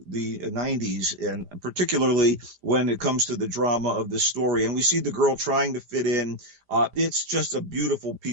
the 90s, and particularly when it comes to the drama of this story. And we see the girl trying to fit in. It's just a beautiful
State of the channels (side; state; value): left; late; 5.0 ms